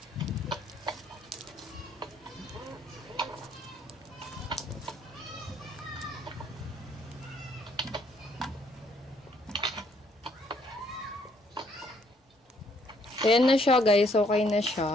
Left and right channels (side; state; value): both; normal; correlation 0.68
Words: Ayan na siya guys, okay na